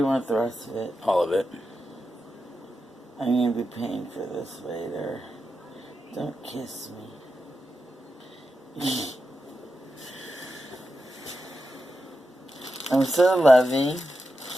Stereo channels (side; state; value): both; normal; correlation 0.89